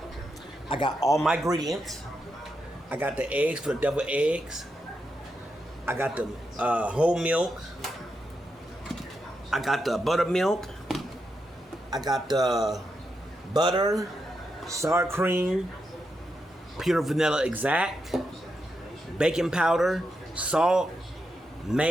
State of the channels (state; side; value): normal; both; correlation 0.85